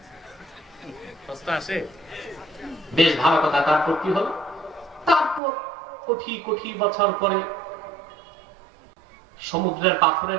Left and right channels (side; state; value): left; drops out; at 5.4 s